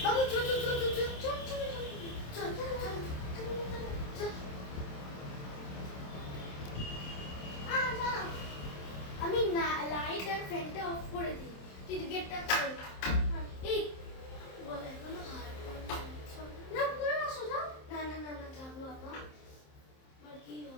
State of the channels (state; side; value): late; right; 27 ms